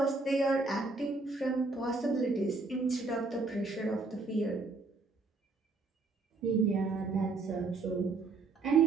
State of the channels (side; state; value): left; quieter; 3.7 dB